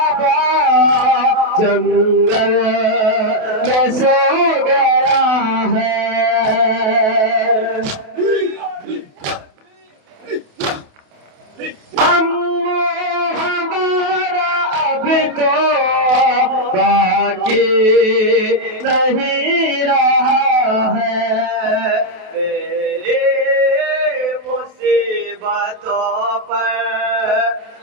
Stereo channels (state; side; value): late; left; 28 ms